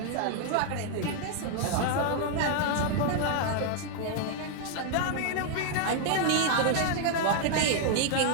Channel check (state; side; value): different; both; correlation 0.00